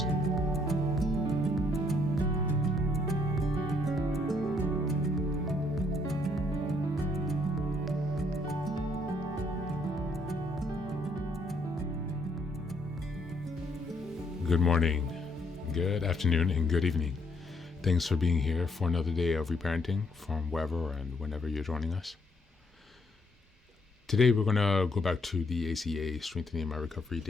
Good morning, good afternoon, and good evening. Thanks for being here for another day of reparenting from wherever and whenever you're joining us. Today we're going to go back to the ACA Strengthening My Recovery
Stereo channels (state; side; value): normal; both; correlation 0.69